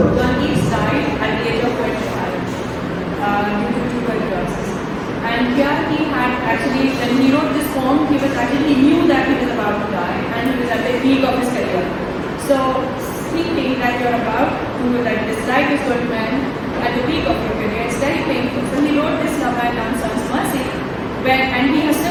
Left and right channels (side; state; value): both; identical; correlation 1.00